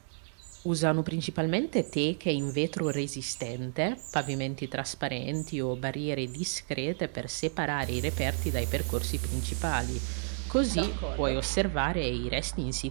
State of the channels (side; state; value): left; silent; digital silence